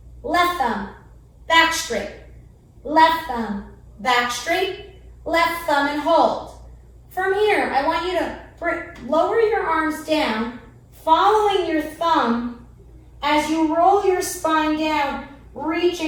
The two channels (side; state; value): both; identical; correlation 1.00